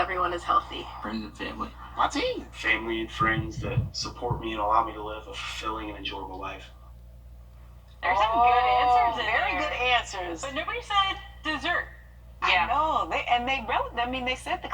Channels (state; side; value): identical; both; correlation 1.00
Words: is healthy. Friends and family. My team. Family and friends that support me and allow me to live a fulfilling and enjoyable life. There's some good answers in Very there. good answers. But nobody said dessert. I know. They said the